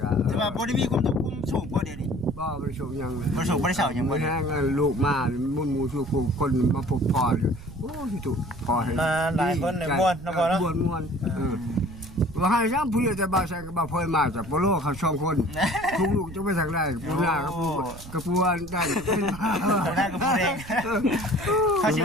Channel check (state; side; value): noise; right; rumble, 15 dB below the sound